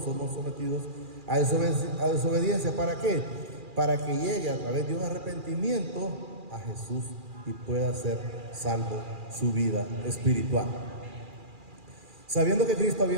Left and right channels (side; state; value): left; late; 2.4 ms